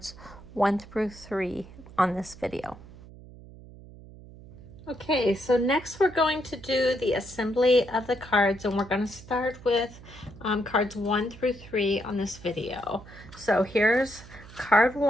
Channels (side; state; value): right; noise; hum, 18 dB below the sound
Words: 1 through 3 on this video. Okay, so next we're going to do the assembly of the cards, and we're going to start with cards 1 through 3 on this video. So here's card